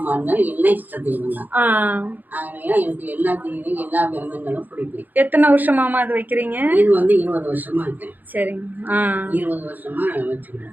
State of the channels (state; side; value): late; left; 0.085 ms